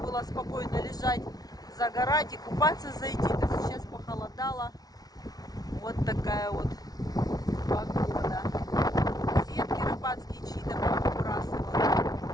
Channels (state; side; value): late; right; 0.19 ms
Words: спокойно лежать, загорать и купаться зайти. То сейчас похолодало. Вот такая вот погода. Сетки рыбацкие чьи-то